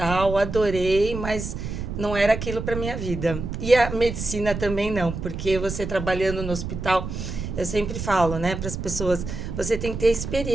adorei, mas não era aquilo para minha vida. E a medicina também não, porque você trabalhando no hospital... Eu sempre falo, né, para as pessoas, você tem que ter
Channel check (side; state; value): right; noise; rumble, 6 dB below the sound